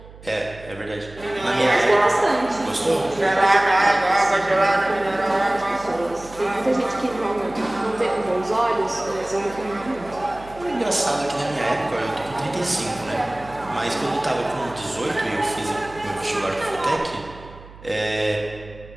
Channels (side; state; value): right; noise; hum, 19 dB below the sound